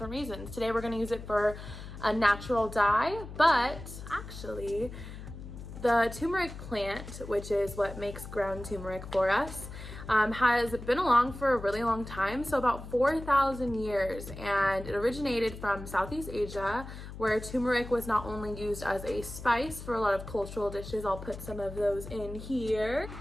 reasons. Today we're going to use it for a natural dye, but actually the turmeric plant, which is what makes ground turmeric for us, has been along for a really long time, so about 4,000 years, and it originated from Southeast Asia, where turmeric was not only used as a spice for a lot of cultural dishes. I'll put some of those in here.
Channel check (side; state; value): left; noise; hum, 12 dB below the sound